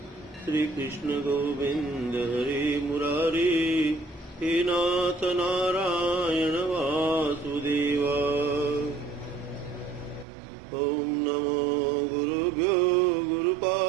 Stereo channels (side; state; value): left; drops out; at 10.2 s